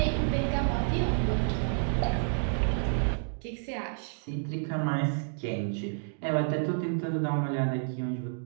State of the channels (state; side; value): silent; left; digital silence